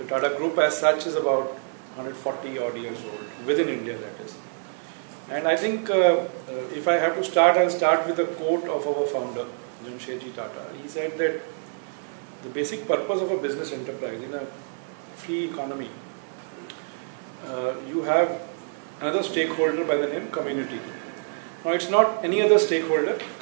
Tata Group as such is about 140 odd years old, within India that is. And I think if I have to start, I'll start with a quote of our founder, Jamshedji Tata. He said that the basic purpose of a business enterprise in a free economy, you have another stakeholder by the name community. Now it's not any other stakeholder,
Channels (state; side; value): silent; left; digital silence